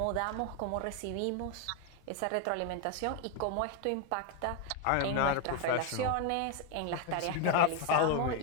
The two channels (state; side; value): different; both; correlation 0.01